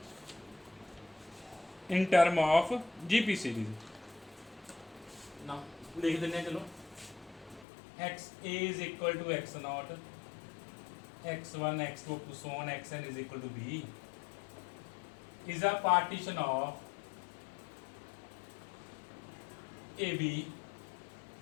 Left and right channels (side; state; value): right; drops out; at 7.7 s